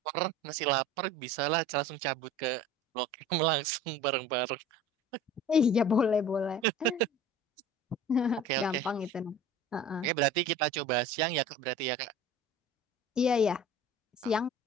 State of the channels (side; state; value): both; normal; correlation 0.42